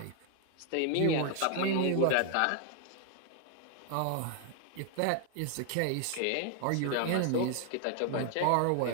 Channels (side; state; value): both; different; correlation 0.00